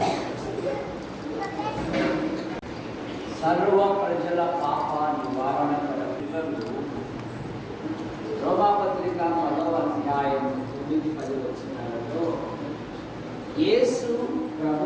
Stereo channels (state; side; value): identical; both; correlation 1.00